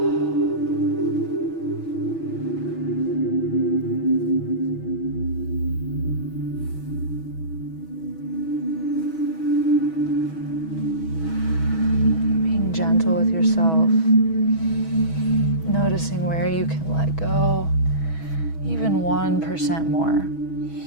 Being gentle with yourself, noticing where you can let go, even 1% more.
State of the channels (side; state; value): right; late; 6.2 ms